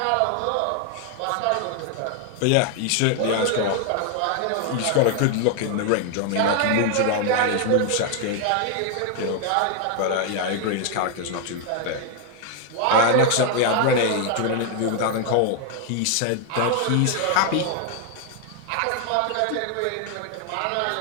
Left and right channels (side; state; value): both; different; correlation 0.00